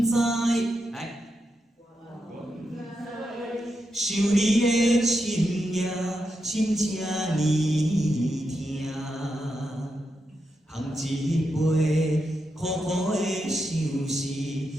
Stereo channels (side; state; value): both; normal; correlation 0.86